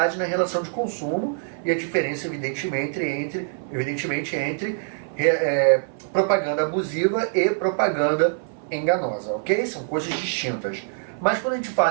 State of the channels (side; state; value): left; silent; 58 dB below the other